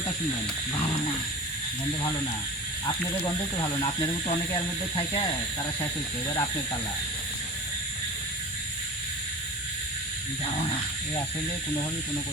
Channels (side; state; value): both; normal; correlation 0.35